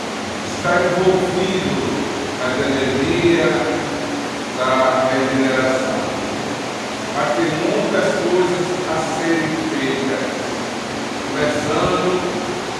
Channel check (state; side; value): identical; both; correlation 1.00